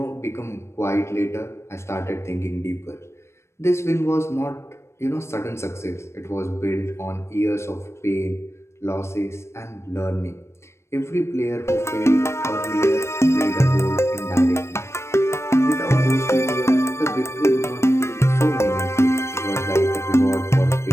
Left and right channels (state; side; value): late; right; 0.13 ms